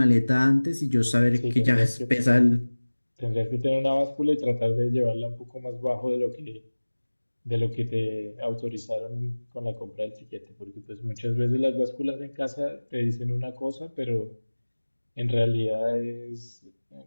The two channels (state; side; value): inverted; both; correlation -1.00